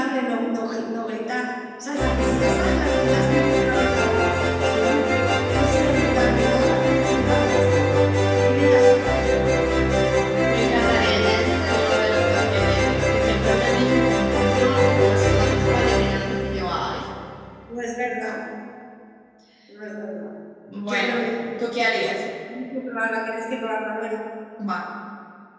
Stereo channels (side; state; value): both; identical; correlation 1.00